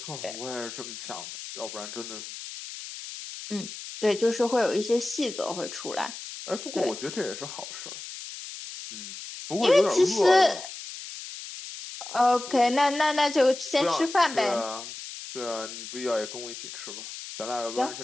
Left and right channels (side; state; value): left; noise; hiss, 11 dB below the sound